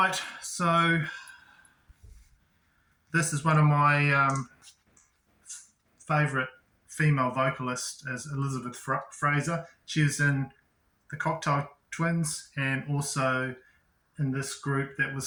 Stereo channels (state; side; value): identical; both; correlation 1.00